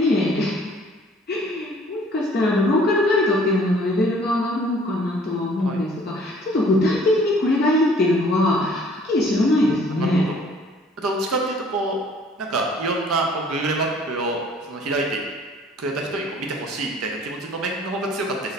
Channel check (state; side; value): normal; both; correlation 0.55